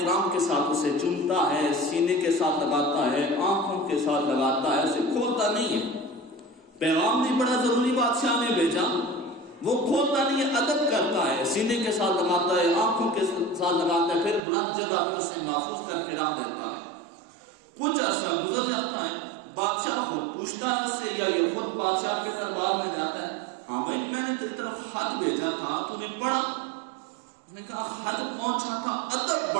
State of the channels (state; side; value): drops out; left; at 14.4 s